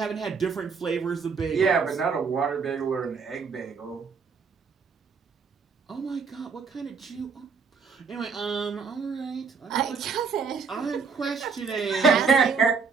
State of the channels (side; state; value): left; quieter; 5.4 dB